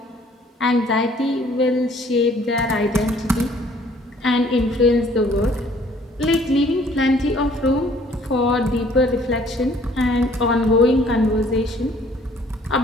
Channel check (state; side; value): normal; both; correlation 0.58